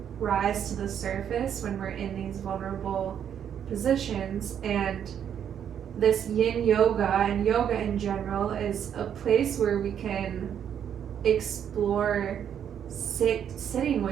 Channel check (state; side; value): quieter; left; 8.9 dB